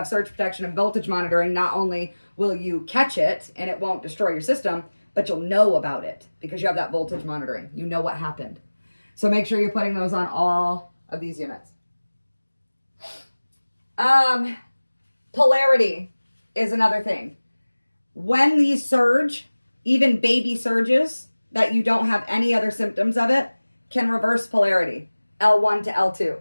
surge protection and voltage monitoring, not only will you catch it and it won't destroy your system, but you'll know about it because you have that voltage monitoring. You know what happened. So make sure you're putting those on all of these units. Polarity is another thing. When these surge, even baby surges that you don't have any other symptoms of it, can reverse polarity, L1 to L2.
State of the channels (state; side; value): inverted; both; correlation -1.00